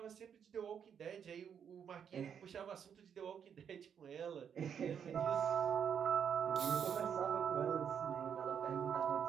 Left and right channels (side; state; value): left; quieter; 7.8 dB